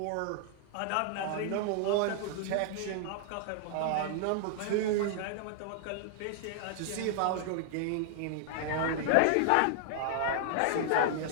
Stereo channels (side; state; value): both; different; correlation -0.01